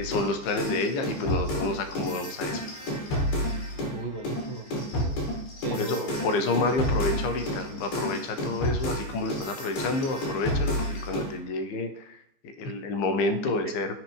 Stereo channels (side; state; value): right; late; 15 ms